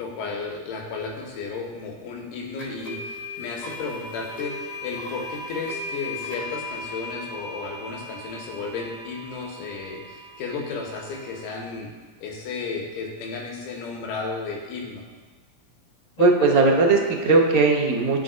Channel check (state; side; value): late; right; 17 ms